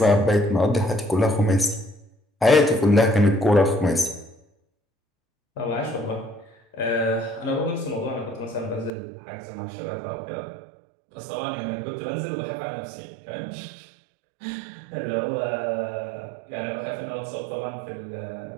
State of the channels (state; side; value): drops out; left; at 8.9 s